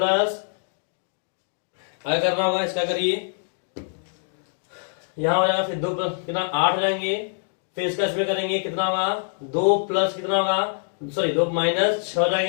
क्या करना होगा इसका करिए यहाँ हो जाएगा, फिर 2 प्लस कितना 8 हो जाएंगे, फिर इसका इसमें करेंगे कितना होगा 2 प्लस कितना होगा सॉरी 2 माइनस 6 हो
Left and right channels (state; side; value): silent; right; digital silence